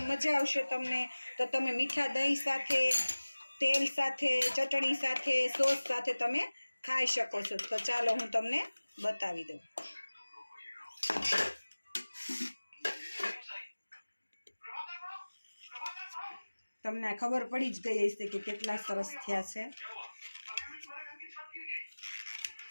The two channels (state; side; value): inverted; both; correlation -1.00